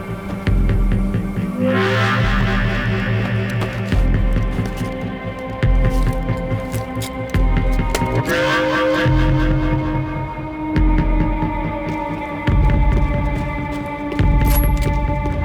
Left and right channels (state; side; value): identical; both; correlation 1.00